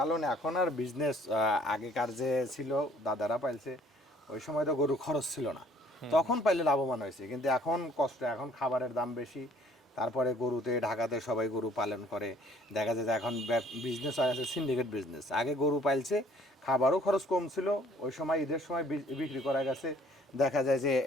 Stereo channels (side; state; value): both; normal; correlation 0.57